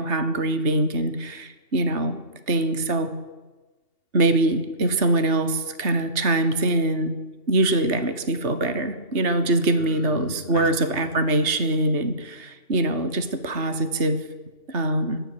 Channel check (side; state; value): left; late; 2.7 ms